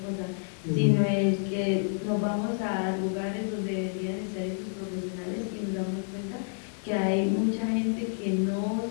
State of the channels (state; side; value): silent; right; 58 dB below the other